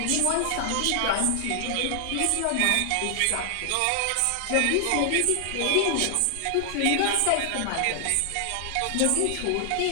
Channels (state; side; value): different; both; correlation 0.00